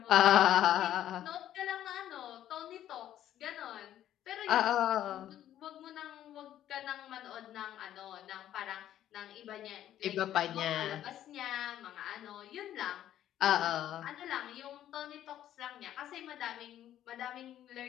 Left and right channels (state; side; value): quieter; right; 11.8 dB